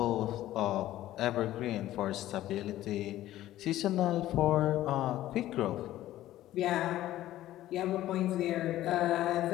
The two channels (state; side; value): quieter; right; 14.3 dB